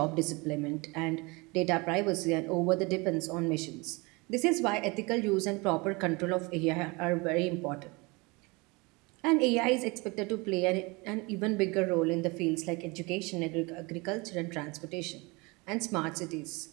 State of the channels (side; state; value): left; quieter; 26.5 dB